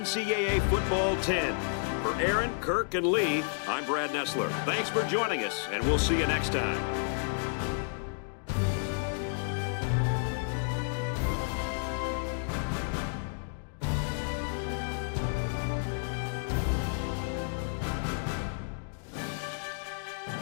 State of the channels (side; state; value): right; silent; digital silence